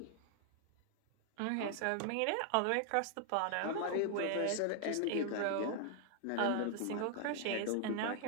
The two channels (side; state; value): both; different; correlation 0.00